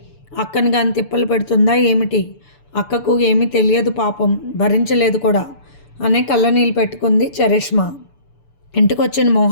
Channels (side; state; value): right; late; 6.9 ms